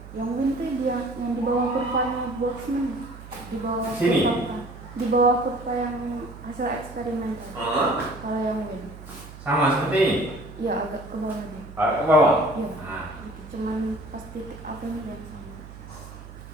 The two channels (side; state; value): right; noise; hum, 15 dB below the sound